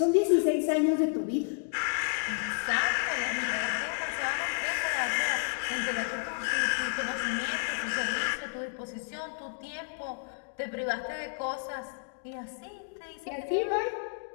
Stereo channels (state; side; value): silent; right; digital silence